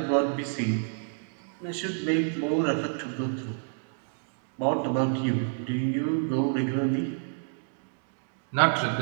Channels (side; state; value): left; silent; digital silence